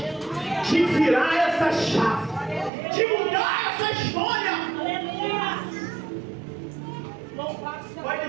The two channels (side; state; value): left; drops out; at 2.7 s